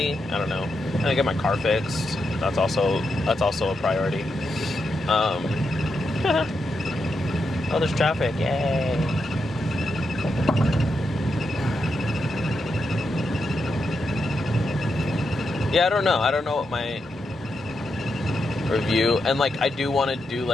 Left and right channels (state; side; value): normal; both; correlation 0.84